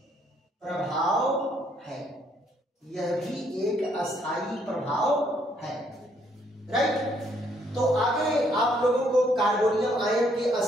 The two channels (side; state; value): both; normal; correlation 0.69